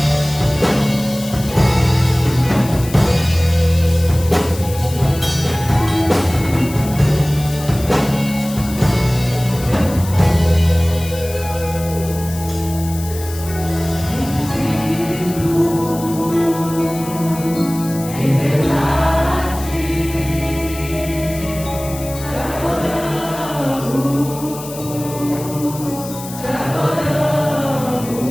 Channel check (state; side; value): noise; left; hiss, 13 dB below the sound